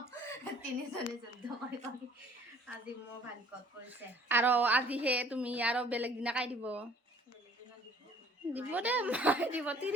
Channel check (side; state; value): both; normal; correlation 0.55